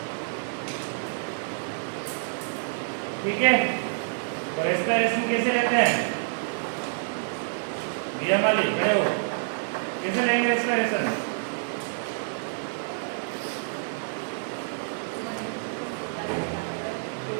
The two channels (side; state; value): left; silent; 60 dB below the other